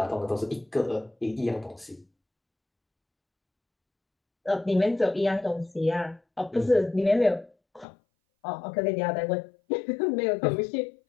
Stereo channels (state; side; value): drops out; right; at 7.9 s